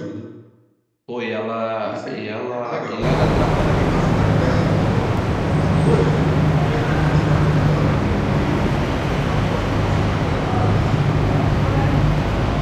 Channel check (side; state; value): both; identical; correlation 1.00